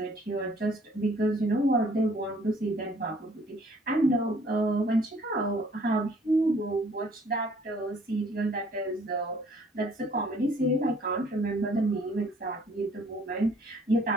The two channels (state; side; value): normal; both; correlation 0.59